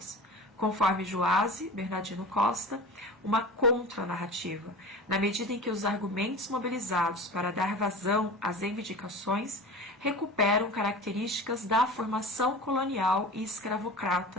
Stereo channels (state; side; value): normal; both; correlation 0.34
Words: conforme Joase Bernardino Costa, uma contranarrativa, na medida em que os argumentos mobilizados para dar vazão às reivindicações recuperam características da formação colonial e